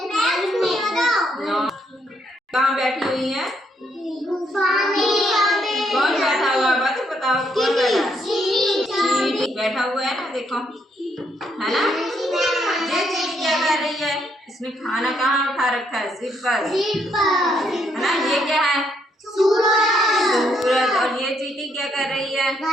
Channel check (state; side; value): normal; both; correlation 0.74